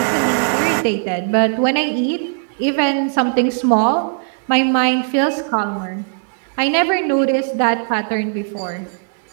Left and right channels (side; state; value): left; silent; 64 dB below the other